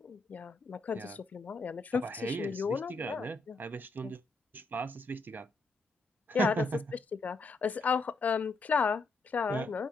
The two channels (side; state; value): right; quieter; 3.3 dB